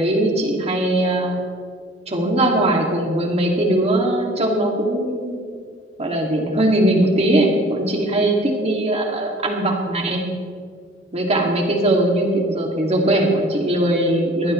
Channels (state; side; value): normal; both; correlation 0.50